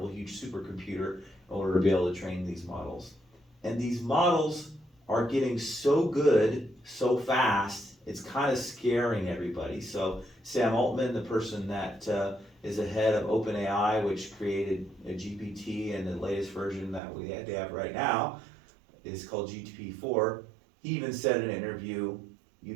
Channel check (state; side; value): drops out; left; at 17.0 s